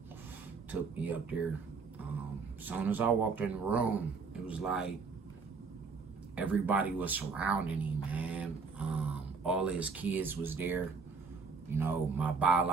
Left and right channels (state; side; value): quieter; left; 4.8 dB